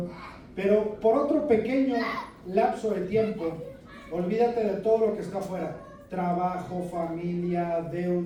Pero por otro pequeño lapso de tiempo, olvídate de todo lo que está afuera. Trabajo, familia,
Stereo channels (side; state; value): both; identical; correlation 1.00